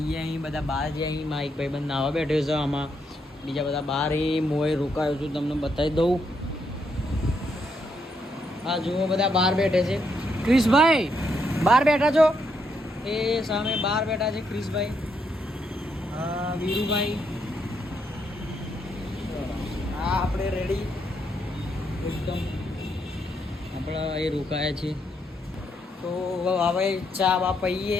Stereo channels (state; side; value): normal; both; correlation 0.77